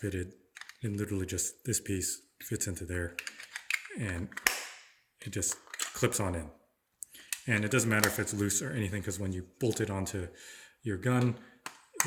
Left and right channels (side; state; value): both; identical; correlation 1.00